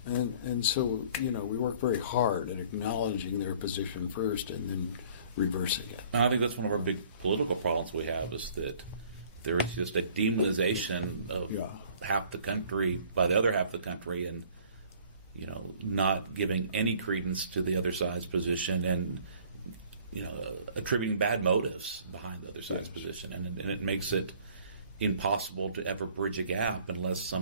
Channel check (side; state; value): both; inverted; correlation -0.54